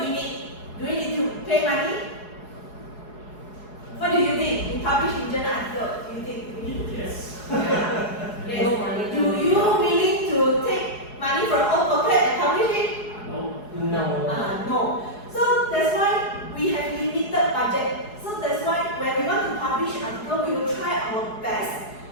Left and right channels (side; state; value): right; late; 4.8 ms